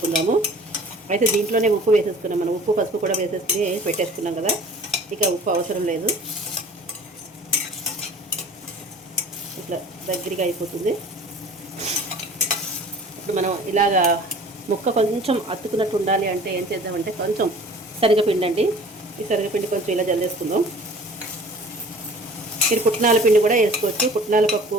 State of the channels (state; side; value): normal; both; correlation 0.46